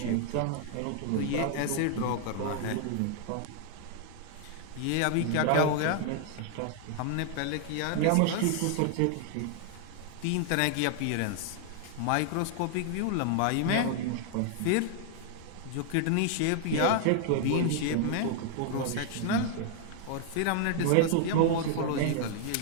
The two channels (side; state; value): both; different; correlation 0.00